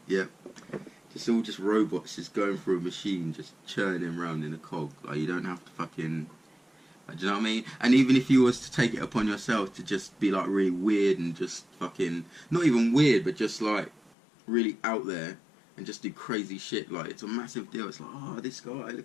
Just all just robots just going through a machine, just churning around in a cog. Like, you don't have to fucking, like, do you know what I mean? And even if you was to take it upon yourself to just be like really weird and just fucking, not even weird, but just like really out there and just do crazy shit, like, it's a massive deal. It's like, oh, this guy,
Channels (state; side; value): drops out; right; at 14.1 s